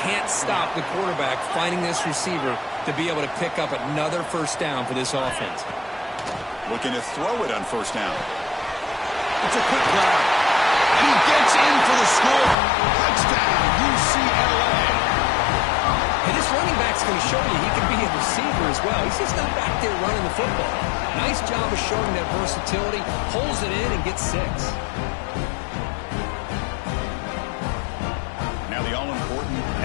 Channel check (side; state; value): right; drops out; at 12.6 s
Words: can't stop the quarterback finding this receiver to be able to pick up another first down for this offense. Looking to throw it on first down. It's a quick grab. And he gets in for the score. Touchdown, UCLA. And this running back's going to show you he can be a receiver as well. He's just not back there running the football. Nice job of showing that versatility. Pulls it in and gets 6. Now the all-important